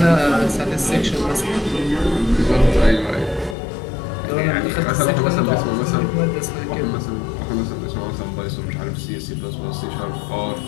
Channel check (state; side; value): drops out; right; at 3.6 s